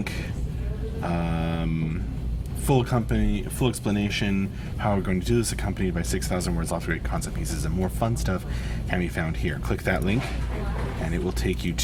full explanation how we're going to do this, accompanied by 6,000 words, lots of great concept pieces, and more fun stuff can be found here. Click that link, and it will take you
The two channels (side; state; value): both; identical; correlation 1.00